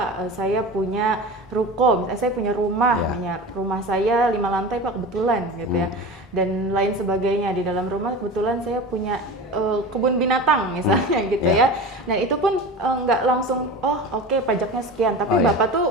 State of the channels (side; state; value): both; normal; correlation 0.31